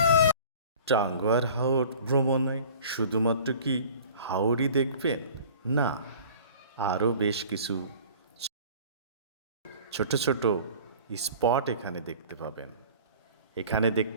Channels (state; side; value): inverted; both; correlation -0.45